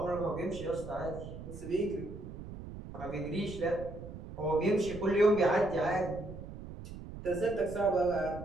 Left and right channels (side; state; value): right; noise; rumble, 11 dB below the sound